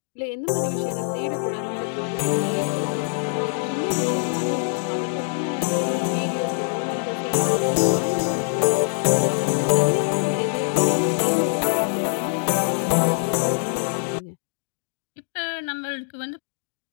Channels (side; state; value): right; silent; digital silence